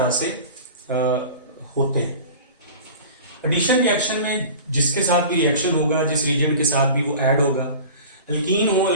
से होते हैं। एडिशन रिएक्शन में जिसके साथ भी रिएक्शन होगा, जिस रिएजेंट के साथ भी वो ऐड होगा, अल्कीन हो,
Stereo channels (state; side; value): inverted; both; correlation -0.38